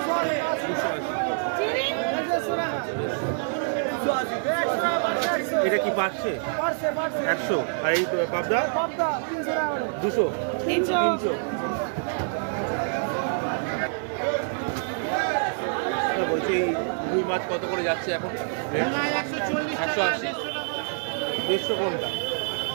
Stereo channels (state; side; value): silent; left; digital silence